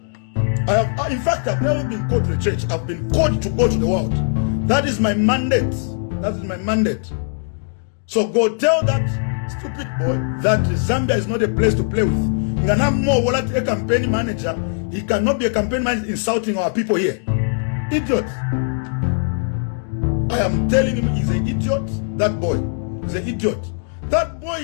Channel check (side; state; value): right; silent; digital silence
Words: In fact, I've never been called to the church. I've been called to go to the world. That is my mandate. That is my mandate. So go tell that stupid boy that Zambia is not a place to play with. Ngana a campaign manager. He cannot be a campaign manager insulting our people here. Idiot. I am telling him he's an idiot. That boy is an idiot. That